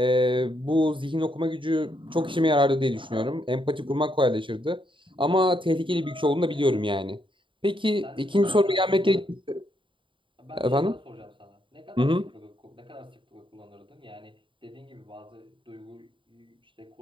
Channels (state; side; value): late; left; 0.24 ms